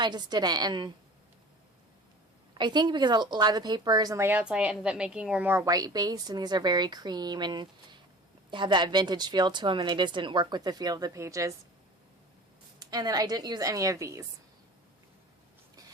just didn't. And I think because a lot of the papers and layouts I ended up making were more white based, and these are very cream and have that vintage feel to them, and they just didn't work with the feel of the pages. And then I didn't use any of these.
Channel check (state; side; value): normal; both; correlation 0.41